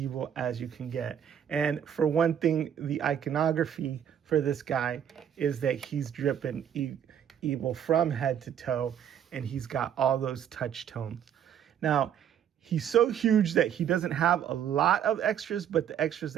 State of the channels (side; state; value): left; quieter; 9.3 dB